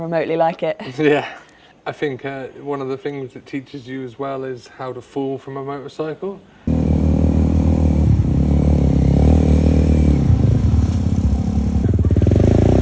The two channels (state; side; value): identical; both; correlation 1.00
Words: like it. Yeah. I think one of the things that teaches you as well is how to fall from a motorcycle.